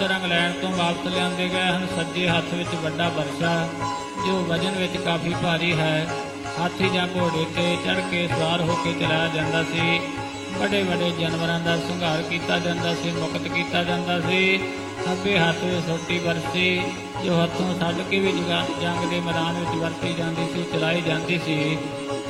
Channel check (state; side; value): identical; both; correlation 1.00